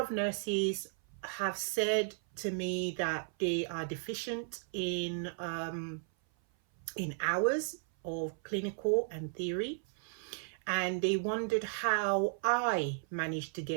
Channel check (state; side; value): silent; left; 55 dB below the other